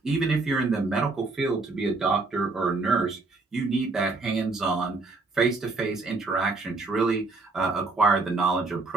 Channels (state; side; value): quieter; left; 3.7 dB